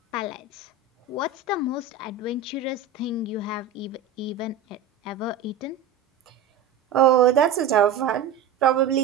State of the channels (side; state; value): left; quieter; 6.4 dB